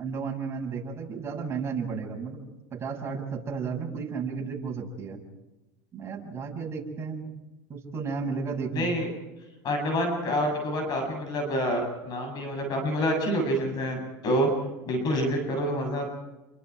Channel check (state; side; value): normal; both; correlation 0.41